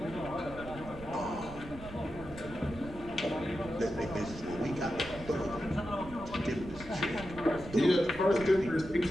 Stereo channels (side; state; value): right; noise; rumble, 14 dB below the sound